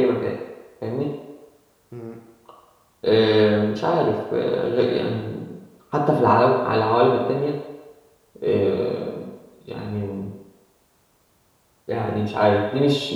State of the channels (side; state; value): both; identical; correlation 1.00